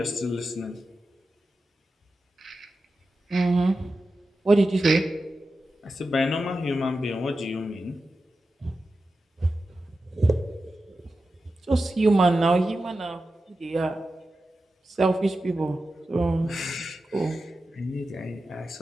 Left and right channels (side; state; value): both; normal; correlation 0.92